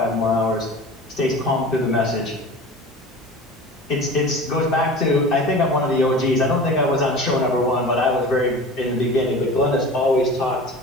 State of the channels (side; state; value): both; normal; correlation 0.37